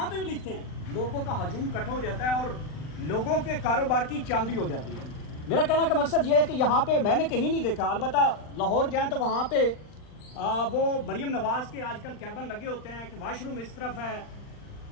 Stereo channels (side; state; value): right; late; 39 ms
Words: पे भी लिखते हैं लोगों का हजूम इकट्ठा हो जाता है और लोगों के कारोबार की चांदी हो जाती है। मेरा कहने का मकसद ये है कि यहाँ पे मैंने कहीं नहीं देखा, अलबत्ता लाहौर जाएँ तो वहाँ पे वो मरियम नवाज़ के आजकल कैबिन लगे होते हैं कि वाशरूम इस तरफ है,